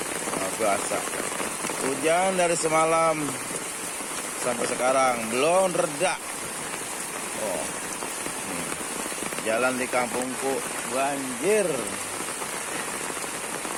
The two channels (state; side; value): identical; both; correlation 1.00